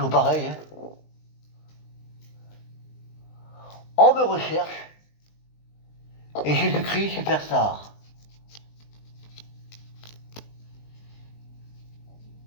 pareil, hein. On me recherche. Et Jésus-Christ, superstar.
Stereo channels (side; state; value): right; late; 20 ms